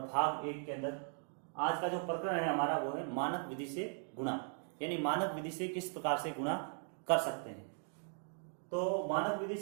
भाग 1 के अंदर आज का जो प्रकरण है हमारा वो है मानक विधि से गुणा, यानी मानक विधि से किस प्रकार से गुणा कर सकते हैं। तो मानक विधि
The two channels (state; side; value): silent; left; 52 dB below the other